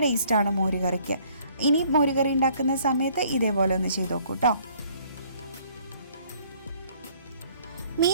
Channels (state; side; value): inverted; both; correlation -0.60